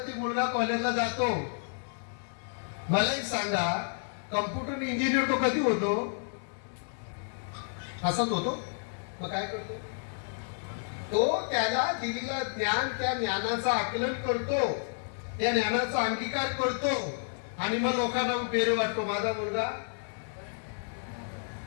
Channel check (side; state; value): right; silent; digital silence